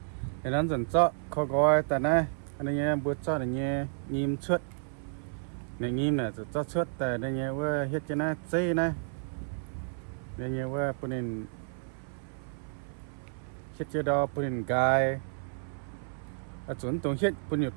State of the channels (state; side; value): silent; left; 56 dB below the other